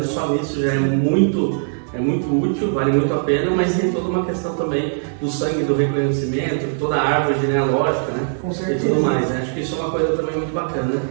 só nisso já é muito útil, vale muito a pena, mas tem toda uma questão também do sangue, do reconhecimento, toda a árvore genealógica, né? Com certeza. E tudo mais, né? Acho que isso é uma coisa também muito bacana,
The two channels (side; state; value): left; silent; 61 dB below the other